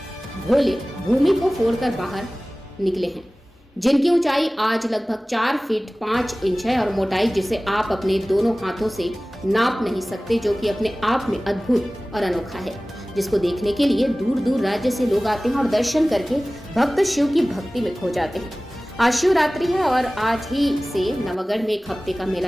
भोले भूमि को फोड़कर बाहर निकले हैं, जिनकी ऊंचाई आज लगभग 4 फीट 5 इंच है और मोटाई जिसे आप अपने दोनों हाथों से नाप नहीं सकते, जो कि अपने आप में अद्भुत और अनोखा है, जिसको देखने के लिए दूर दूर राज्य से लोग आते हैं और दर्शन करके भक्त शिव की भक्ति में खो जाते हैं। आज शिवरात्रि है और आज ही से नवागढ़ में एक हफ्ते का मेला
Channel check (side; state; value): both; normal; correlation 0.98